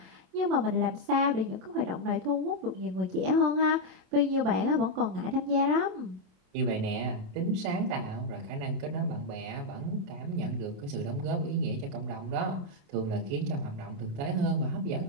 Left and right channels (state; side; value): late; left; 27 ms